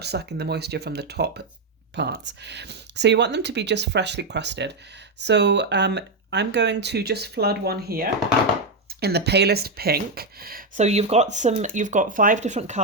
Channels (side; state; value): left; quieter; 3.0 dB